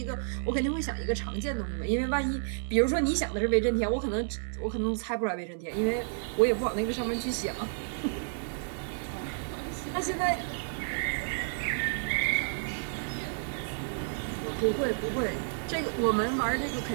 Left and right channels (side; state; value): left; silent; digital silence